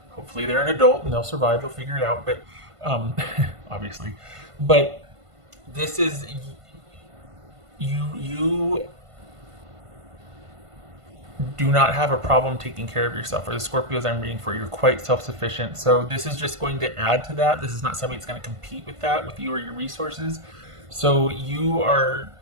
Hopefully they're an adult and they'll survive. They'll figure it out. But obviously, but this is you do not have a problem taking care of yourself. Or the Scorpios I'm reading for, you're quite self-sufficient. So this is just going to add to that. This is not somebody that's going to compete with that, with you or your resources. So you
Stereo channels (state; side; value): late; left; 1.5 ms